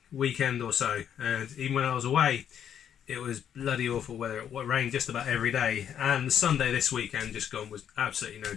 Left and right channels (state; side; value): quieter; right; 9.1 dB